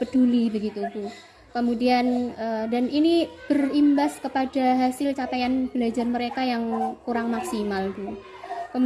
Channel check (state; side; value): identical; both; correlation 1.00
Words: peduli begitu Bu. Kemudian dan ini berimbas kepada hasil capaian belajar mereka yang kurang maksimal Bu.